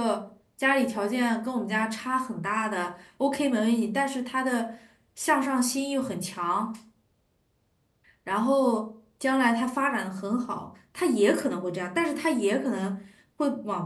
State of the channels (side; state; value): both; identical; correlation 1.00